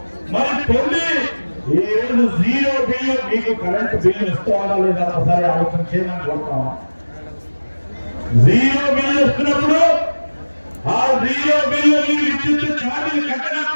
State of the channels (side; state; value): both; inverted; correlation -1.00